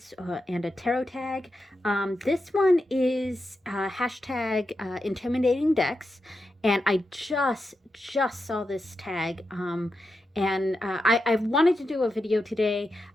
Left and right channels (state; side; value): normal; both; correlation 0.88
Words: and a tarot tag. This one is hashtag intimidating decks, and I just saw this tag. I wanted to do a video today.